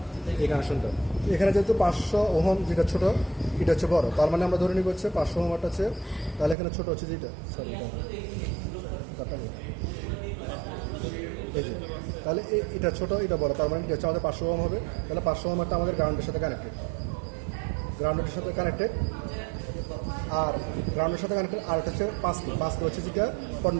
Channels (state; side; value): drops out; left; at 6.6 s